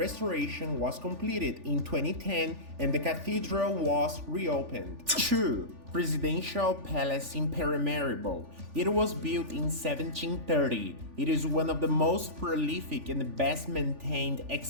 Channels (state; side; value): late; left; 3.4 ms